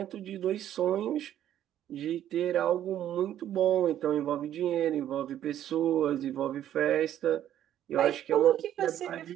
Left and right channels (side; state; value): left; quieter; 11.3 dB